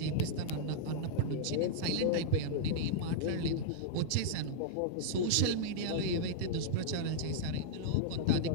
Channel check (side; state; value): both; different; correlation -0.02